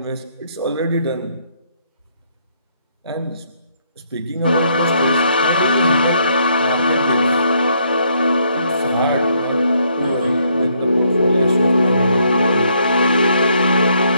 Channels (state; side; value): inverted; both; correlation -0.71